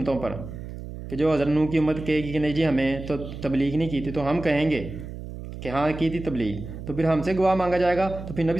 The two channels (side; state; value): right; noise; hum, 10 dB below the sound